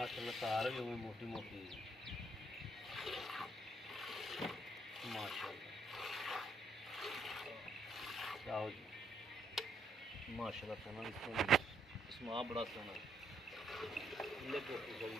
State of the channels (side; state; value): both; normal; correlation 0.72